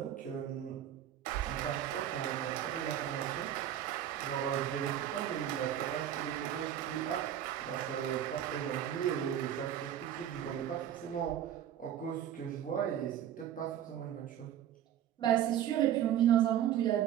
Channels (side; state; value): left; quieter; 10.8 dB